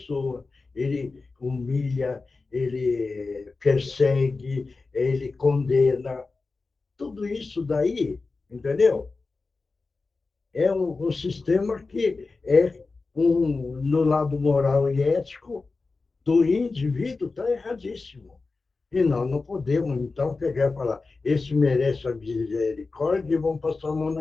Ele humilha, ele persegue, ele condena. Tudo isso daí, entendeu? É um sistema que no lado moral e ético do indivíduo está erradíssimo. E nós não podemos, então, pegar e falar, esse merece a misericórdia e vamos passar a mão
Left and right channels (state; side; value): quieter; right; 3.9 dB